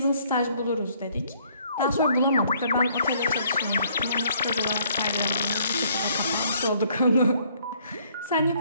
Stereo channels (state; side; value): inverted; both; correlation -0.64